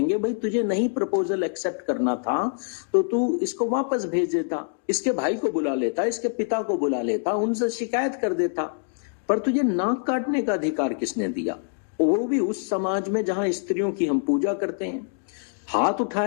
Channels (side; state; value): right; silent; digital silence